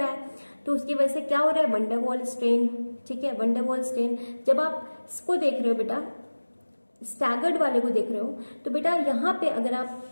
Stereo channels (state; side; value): inverted; both; correlation -1.00